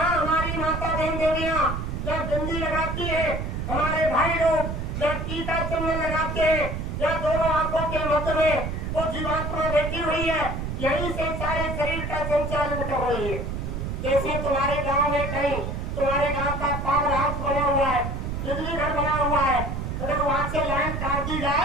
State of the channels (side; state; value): right; noise; rumble, 4 dB below the sound